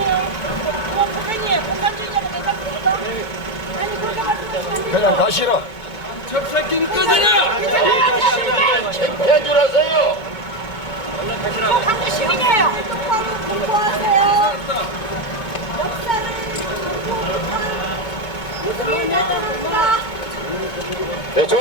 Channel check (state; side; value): late; right; 2.2 ms